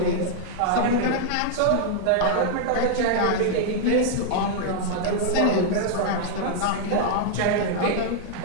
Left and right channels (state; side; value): different; both; correlation 0.00